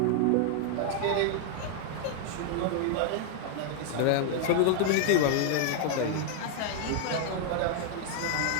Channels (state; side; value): different; both; correlation 0.00